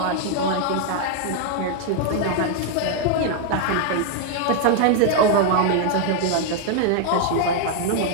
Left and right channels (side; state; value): both; different; correlation 0.00